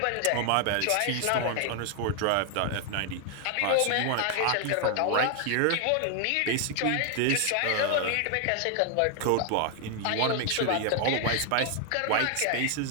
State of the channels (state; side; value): different; both; correlation 0.00